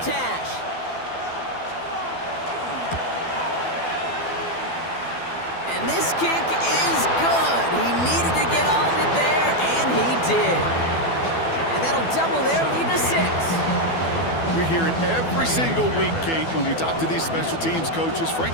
hash. And this kick is good. He needed to get all of it there, and he did. And that'll double their lead to 6. We hear it every single week, Kate, when we talk to these special teams coaches,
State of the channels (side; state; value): right; late; 12 ms